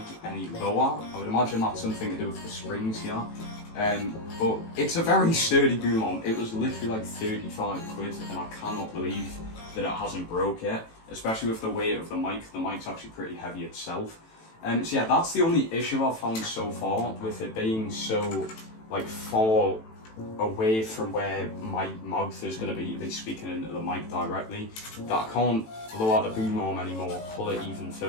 any lower. I would imagine that's something to do with the springs here. But it's a very sturdy boom arm. It was literally like 35 quid, and I cannot believe that it hasn't broke yet, especially with the weight of the mic. The mic's actually pretty heavy itself. So yeah, that's the only issue I've found so far with it being so like far away from where my mouth is going to be speaking into the mic directly, that I can't blow out the boom arm anymore, pull it even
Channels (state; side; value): late; right; 18 ms